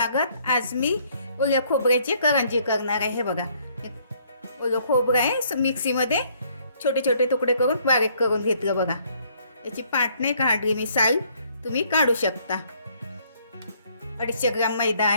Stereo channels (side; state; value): both; inverted; correlation -0.65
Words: आज मी ओल्या खोबऱ्याची करंजी करणार आहे. हे बघा, ओलं खोबरं आहे, मिक्सीमध्ये छोटे छोटे तुकडे करून बारीक करून घेतलं. बघा, याची पाट नाही काढली मी, साल तुम्ही काढू शकता. 250 ग्राम मैदा